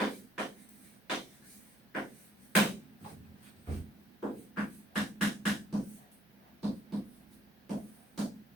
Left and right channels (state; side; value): normal; both; correlation 0.62